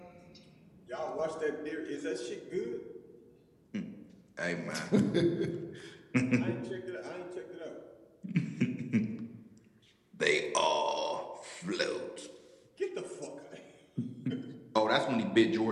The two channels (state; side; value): identical; both; correlation 1.00